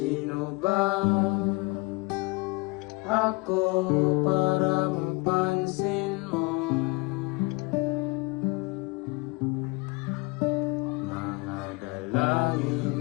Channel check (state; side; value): quieter; right; 25.7 dB